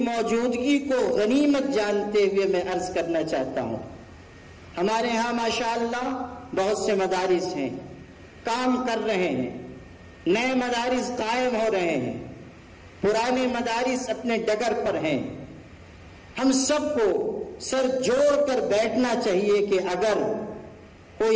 موجودگی کو غنیمت جانتے ہوئے میں عرض کرنا چاہتا ہوں۔ ہمارے ہاں ماشاءاللہ بہت سے مدارس ہیں، کام کر رہے ہیں، نئے مدارس قائم ہو رہے ہیں، پرانے مدارس اپنے ڈگر پر ہیں۔ ہم سب کو سر جوڑ کر بیٹھنا چاہیے کہ اگر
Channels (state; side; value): identical; both; correlation 1.00